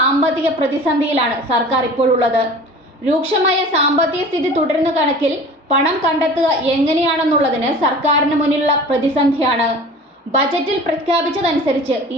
പ്രതിസന്ധിയിലാണ് സർക്കാർ ഇപ്പോഴുള്ളത്. രൂക്ഷമായ സാമ്പത്തിക സ്ഥിതി തുടരുന്ന കണക്കിൽ പണം കണ്ടെത്തുക എങ്ങനെയാണെന്നുള്ളതിന് സർക്കാരിന് മുന്നിലുള്ള പ്രതിസന്ധിയാണ്. ബജറ്റിൽ പ്രഖ്യാപിച്ചതനുസരിച്ച്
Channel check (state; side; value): normal; both; correlation 0.41